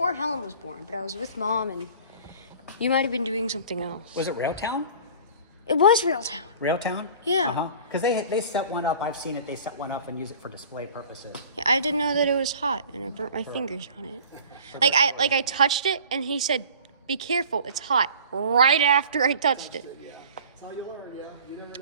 Helen was born, but I was with mom and you might have been doing something else. Was it Railtown? It was Railtown. Railtown? Yeah. Because they set one up. I've seen it. They set one up and use it for display purposes. Yeah, I didn't know that it was hot and I burnt my fingers on it. I touched it and he said, "Be careful, it's hot." Right after I touched it. Yeah. That's how you learn, yeah. You never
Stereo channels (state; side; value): inverted; both; correlation -0.45